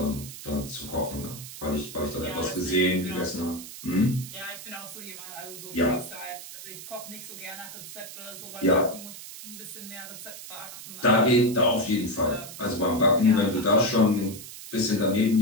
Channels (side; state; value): right; noise; hiss, 13 dB below the sound